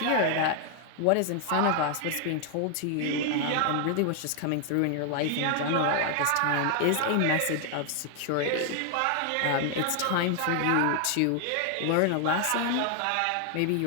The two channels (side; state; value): both; different; correlation 0.00